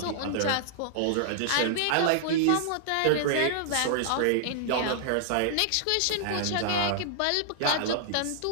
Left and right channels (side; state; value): both; different; correlation -0.01